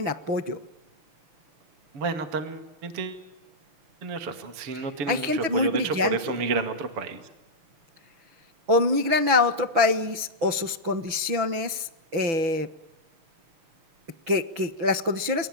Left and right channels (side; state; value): left; late; 6.1 ms